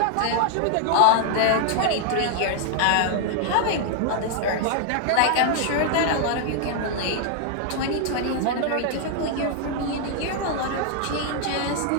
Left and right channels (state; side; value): different; both; correlation 0.00